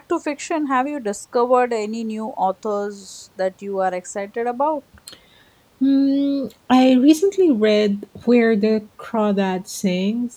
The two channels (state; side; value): identical; both; correlation 1.00